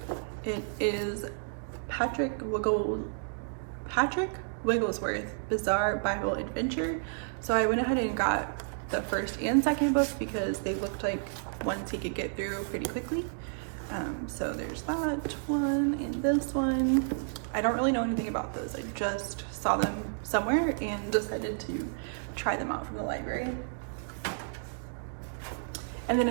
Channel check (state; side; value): silent; left; digital silence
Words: It is Patrick Wigglesworth Bizarre Bible Adventure. So I went ahead and got the first and second book because they looked like ones he could get through pretty quickly. So there's that one and this one. I don't really know anything about those. I just saw them somewhere and decided to try them out from the library. And then